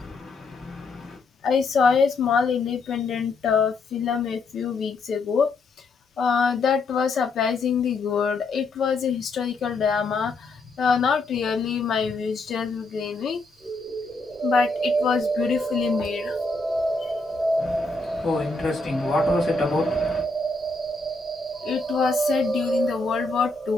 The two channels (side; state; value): right; quieter; 3.4 dB